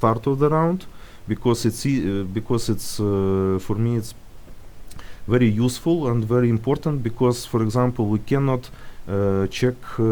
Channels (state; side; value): identical; both; correlation 1.00